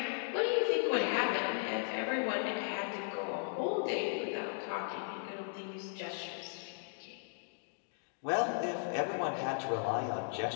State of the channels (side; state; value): right; silent; digital silence